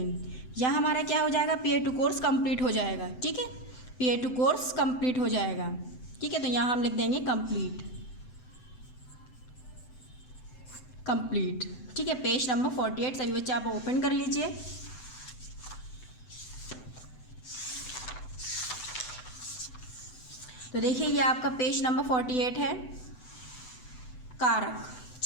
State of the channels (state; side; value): late; right; 7.9 ms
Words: यह हमारा क्या हो जाएगा? PA2 कोर्स कंप्लीट हो जाएगा, ठीक है। PA2 कोर्स कंप्लीट हो जाएगा, ठीक है। तो यहाँ हम लिख देंगे कंप्लीट, कंप्लीट, ठीक है। पेज नंबर 48 सभी बच्चे आप ओपन कर लीजिए। तो देखिए ये आपका पेज नंबर 48 है। कारक,